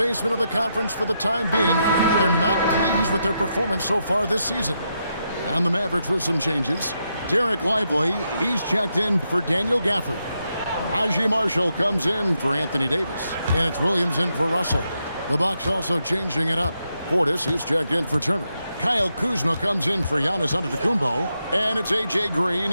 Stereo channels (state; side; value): inverted; both; correlation -0.82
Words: of the conference for the time being. They're not pleased with their performance so far this season. And the Mavericks with some changes. Derek Lively, he's checked in for Daniel Gafford. Najee Marshall comes in for Anthony Davis. And it's Williams in for Russell. The Bucks also changing it up. Portis, he's checked in for Turner. Kyle Kuzma comes in for Giannis Antetokounmpo. And it's A.J. Green